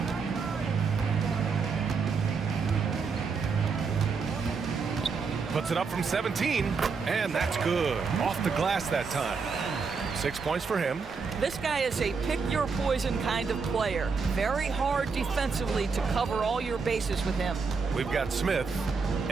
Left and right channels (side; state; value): left; quieter; 5.1 dB